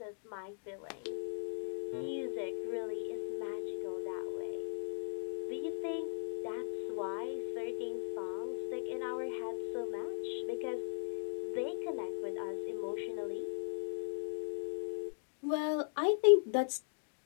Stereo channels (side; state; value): right; silent; digital silence